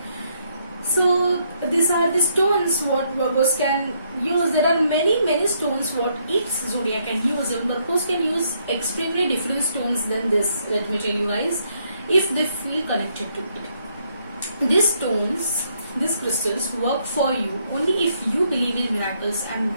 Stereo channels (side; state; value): both; inverted; correlation -0.73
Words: So these are the stones what Virgos can use. There are many stones what each zodiac can use, and Virgos can use extremely different stones than this. Let me tell you guys, if they feel connected to it. These stones, these crystals work for you only if you believe in miracles and